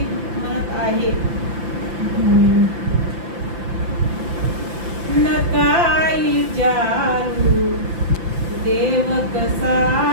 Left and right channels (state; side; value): late; left; 5.8 ms